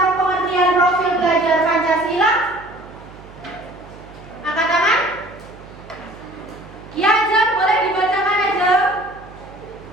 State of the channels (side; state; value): right; noise; hum, 20 dB below the sound